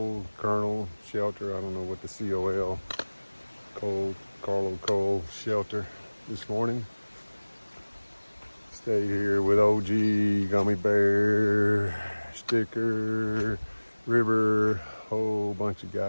Shelter. I don't know what the Carlo Cole Shelter this morning. Stayed here with OG, Gummy Bear, Sticker, River, whole bunch of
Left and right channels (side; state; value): both; inverted; correlation -1.00